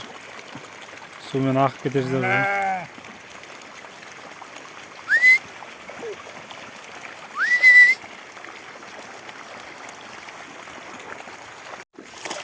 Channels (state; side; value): identical; both; correlation 1.00